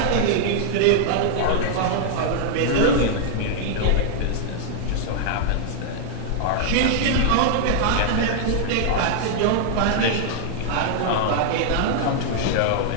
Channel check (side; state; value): both; different; correlation -0.01